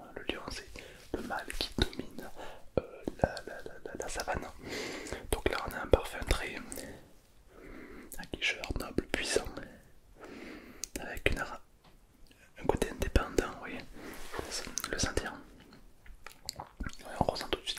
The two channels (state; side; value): identical; both; correlation 1.00